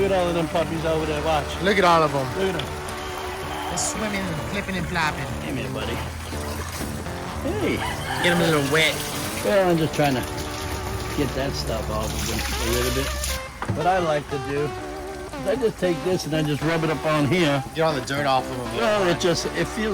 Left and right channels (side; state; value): both; identical; correlation 1.00